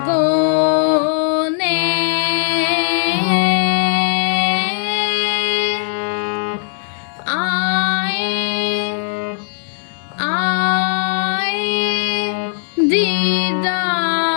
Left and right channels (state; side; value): silent; right; digital silence